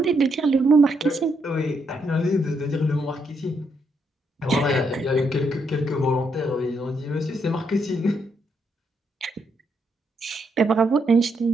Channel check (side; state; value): both; normal; correlation 0.77